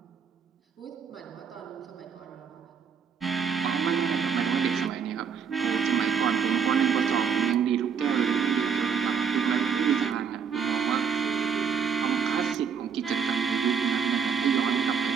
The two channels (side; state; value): left; quieter; 6.6 dB